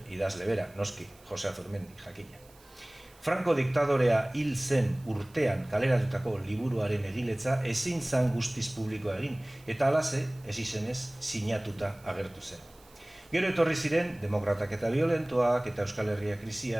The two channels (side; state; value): right; noise; hiss, 28 dB below the sound